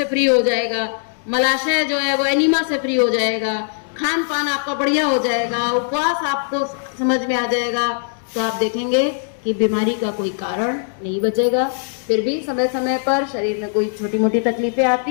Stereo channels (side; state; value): right; silent; digital silence